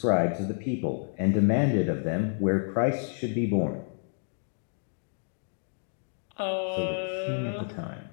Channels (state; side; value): silent; right; 58 dB below the other